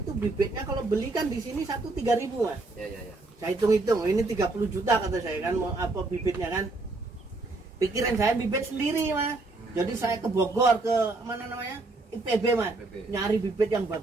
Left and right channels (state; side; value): quieter; left; 3.3 dB